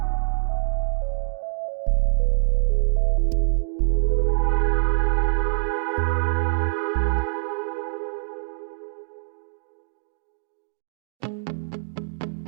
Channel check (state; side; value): silent; left; digital silence